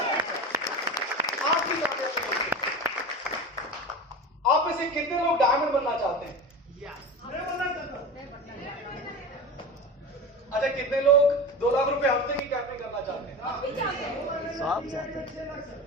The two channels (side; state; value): both; normal; correlation 0.29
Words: आपकी कामयाबी निश्चित है। आप में से कितने लोग डायमंड बनना चाहते हैं? अच्छा, कितने लोग 2 लाख रुपए हफ्ते की कैपिंग करना चाहते हैं? सब चाहते हैं।